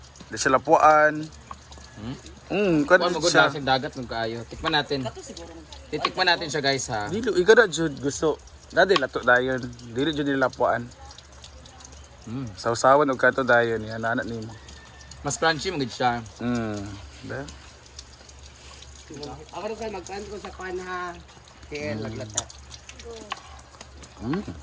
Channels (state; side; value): identical; both; correlation 1.00